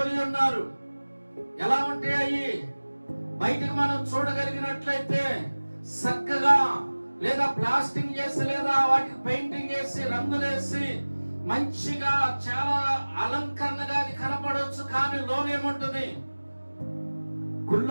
ఉన్నారు. ఎలా ఉంటాయి అయ్యి? బయటకు మనం చూడగలిగినట్లయితే చక్కగా, లేదా ప్లాస్టింగ్ చేసి, లేదా వాటికి పెయింటింగ్ వేసి, రంగులేసి మంచిగా చాలా అలంకరణగా అది కనపడవచ్చు. కానీ లోనేముంటుంది?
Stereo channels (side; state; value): both; inverted; correlation -1.00